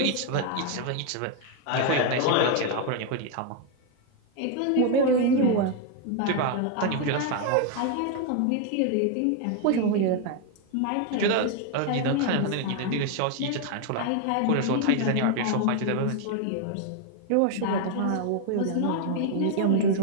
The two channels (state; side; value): different; both; correlation 0.01